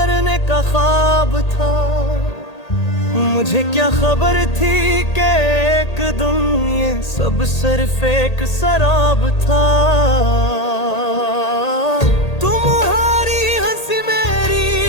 का ख्वाब था। मुझे क्या खबर थी कि एक दिन ये सब सिर्फ एक शराब था। तुम्हारी हंसी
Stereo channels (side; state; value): right; late; 1.8 ms